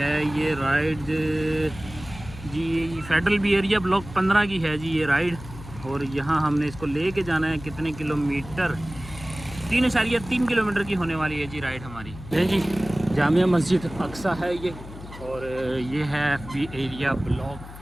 ये राइड जी? फेडरल बी एरिया ब्लॉक 15 की है जी ये राइड, और यहाँ हमने इसको लेके जाना है कितने किलोमीटर? 3.3 किलोमीटर की होने वाली है जी राइड हमारी। है जी जामिया मस्जिद अक्सा है ये, और ये है बी एरिया ब्लॉक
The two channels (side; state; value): left; noise; hum, 14 dB below the sound